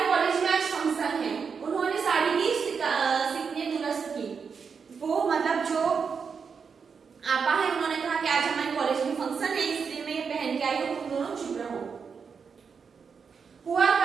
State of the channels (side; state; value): left; quieter; 5.9 dB